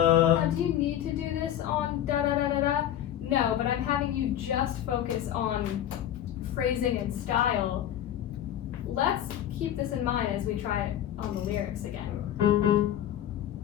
Do you need to do this on da da da da da? No, but I'm having you just focus on phrasing and style. Let's keep this in mind as we try it on the lyrics again.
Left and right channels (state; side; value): quieter; right; 11.2 dB